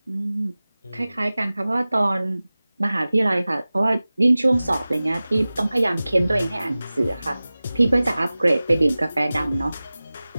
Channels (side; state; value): both; inverted; correlation -0.98